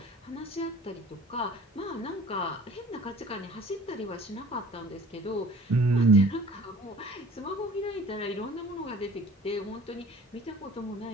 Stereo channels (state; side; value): normal; both; correlation 0.48